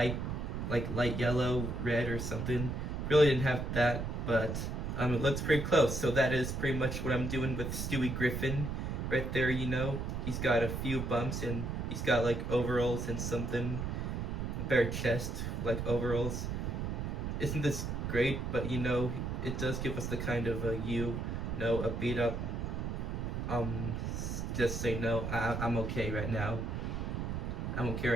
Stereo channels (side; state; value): right; noise; rumble, 3 dB below the sound